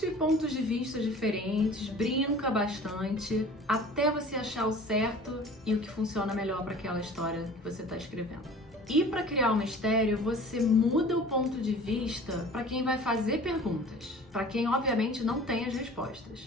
pontos de vista diferentes, brinca bastante, até você achar o certo e o que funciona melhor para aquela história que você está escrevendo. E para criar um mistério, você muda o ponto de vista para quem vai fazer perguntas, para quem obviamente não tem as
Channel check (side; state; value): both; normal; correlation 0.44